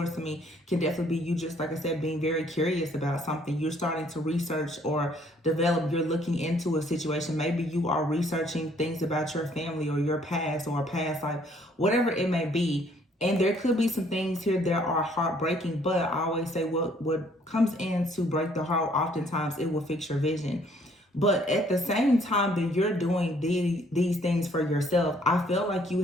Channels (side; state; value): both; normal; correlation 0.63